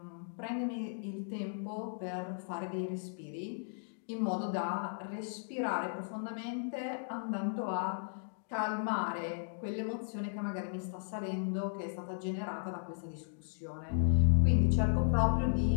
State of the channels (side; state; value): right; silent; digital silence